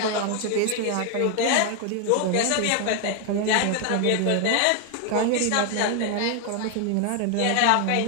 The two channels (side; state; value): both; different; correlation 0.00